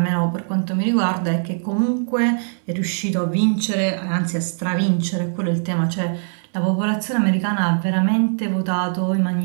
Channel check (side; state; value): left; silent; digital silence